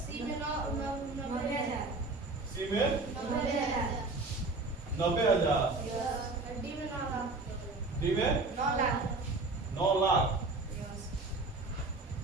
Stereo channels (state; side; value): quieter; left; 3.4 dB